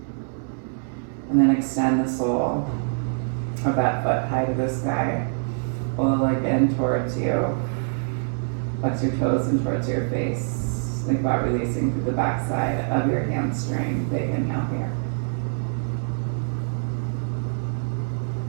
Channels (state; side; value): silent; left; digital silence